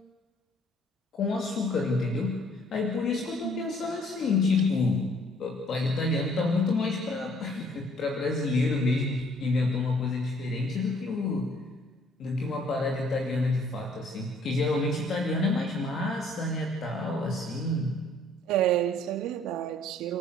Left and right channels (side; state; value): both; normal; correlation 0.60